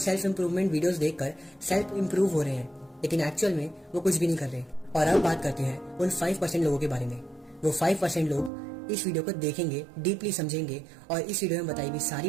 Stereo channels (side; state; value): left; drops out; at 8.5 s